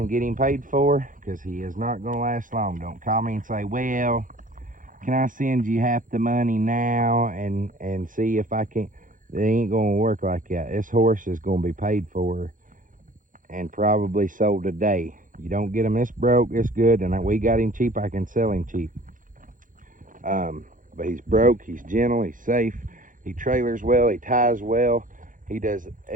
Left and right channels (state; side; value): late; left; 0.39 ms